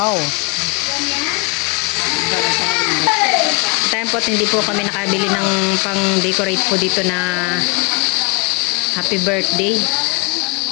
Time po at hindi po kami nakabili ng pang-decorate po dito na happy birthday.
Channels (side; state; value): right; quieter; 30.3 dB